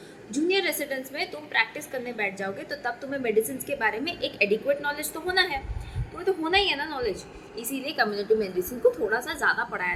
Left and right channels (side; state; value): both; identical; correlation 1.00